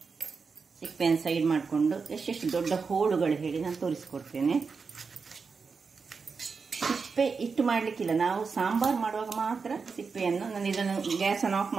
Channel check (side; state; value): left; quieter; 5.1 dB